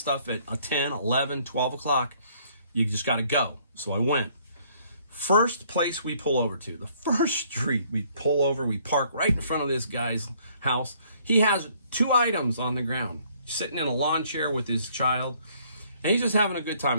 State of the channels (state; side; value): inverted; both; correlation -0.63